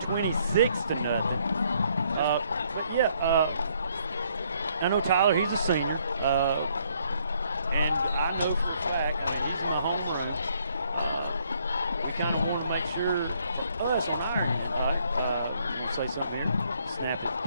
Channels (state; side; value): inverted; both; correlation -0.68